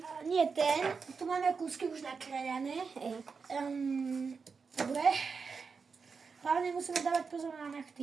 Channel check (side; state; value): left; quieter; 5.2 dB